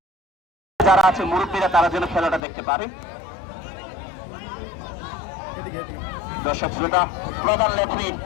যারা আছে মুরব্বীরা, তারা যেন খেলাটা দেখতে পারে। দর্শক শ্রোতা, প্রধান রেফারি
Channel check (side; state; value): right; drops out; at 2.4 s